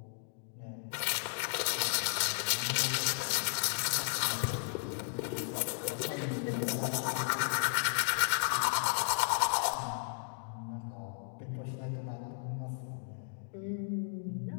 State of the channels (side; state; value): right; silent; digital silence